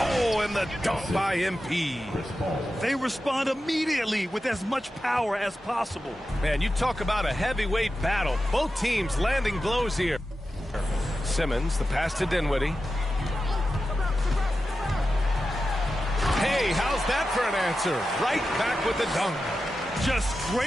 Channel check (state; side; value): normal; both; correlation 0.92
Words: and the dunk by MP. They respond immediately with as much power as possible. Man, you talk about a heavyweight battle. Both teams landing blows here. Simmons, the pass to Dinwiddie. Hey, how's that for an answer? Right back with the dunk. Just